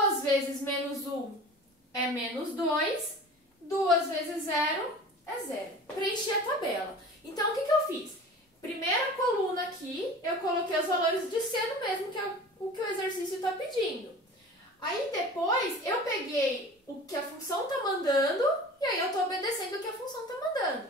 vezes menos 1 é menos 2. 2 vezes 0 é 0. Preenchi a tabela. Então, o que eu fiz? Primeira coluna aqui, eu coloquei os valores de seno mesmo, que é o que o exercício está pedindo. Aí, depois, eu peguei o que a função está mandando e aí eu estou obedecendo o que a função está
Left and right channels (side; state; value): both; normal; correlation 0.39